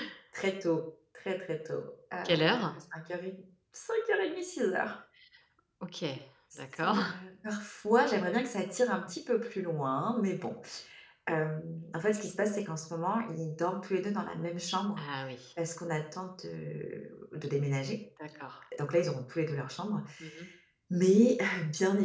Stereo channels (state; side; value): identical; both; correlation 1.00